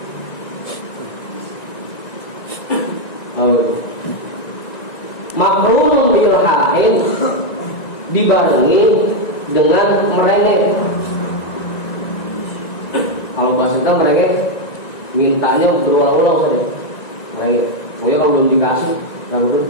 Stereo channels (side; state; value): right; late; 1.9 ms